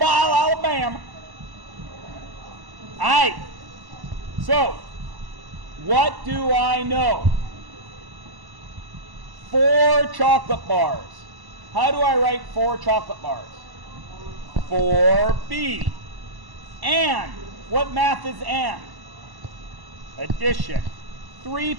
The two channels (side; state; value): left; late; 1.1 ms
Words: All right. So, what do I know? 4 chocolate bars. How do I write 4 chocolate bars? 4B. And. What math is and? Addition. 3